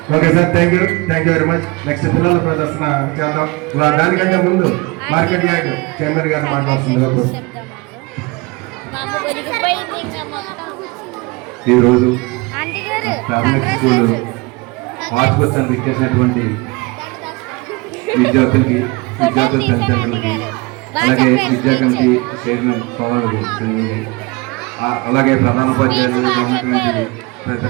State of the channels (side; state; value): left; quieter; 25.7 dB